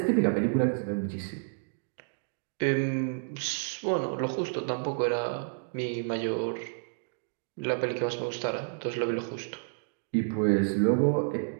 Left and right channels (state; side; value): silent; left; digital silence